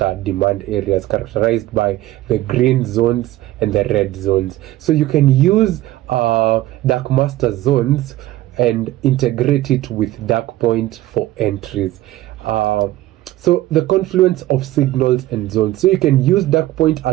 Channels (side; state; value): left; quieter; 15.7 dB